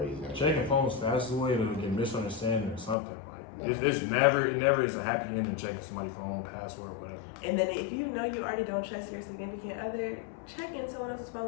Checking phones fastest way to get misunderstanding or something. Like it never is a happy ending checking somebody's phone, password, whatever. And then if you know you already don't trust your significant other, check in someone else's phone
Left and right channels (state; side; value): drops out; right; at 3.0 s